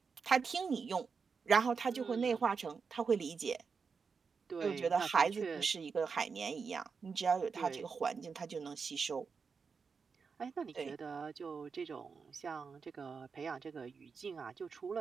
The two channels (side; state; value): left; quieter; 5.4 dB